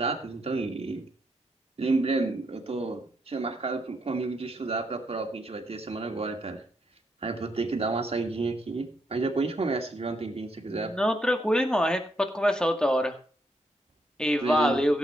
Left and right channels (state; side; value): normal; both; correlation 0.77